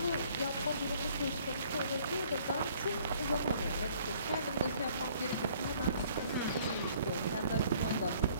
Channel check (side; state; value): both; inverted; correlation -0.59